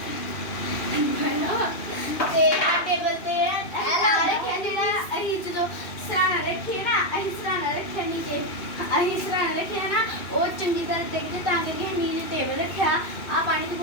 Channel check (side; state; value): right; late; 2.7 ms